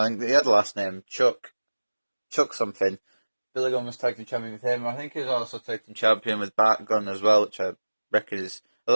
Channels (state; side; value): inverted; both; correlation -1.00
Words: think he had the last name, Chuck something. Billy Gunn was tag team champion with him. I think he was also tag team champion with Bart Gunn as well, which I reckon is, I